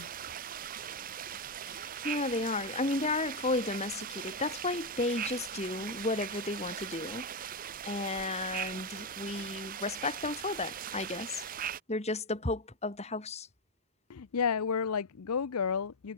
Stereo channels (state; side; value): normal; both; correlation 0.05